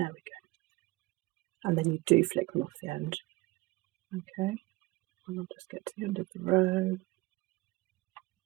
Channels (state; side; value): quieter; left; 21.7 dB